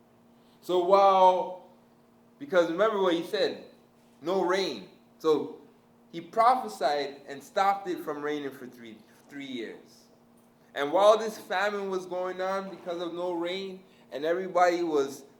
So because remember what He said, no rain. So He prophesied and stopped it from raining for three years. And while this famine was going on because of no rain, and everybody was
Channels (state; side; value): identical; both; correlation 1.00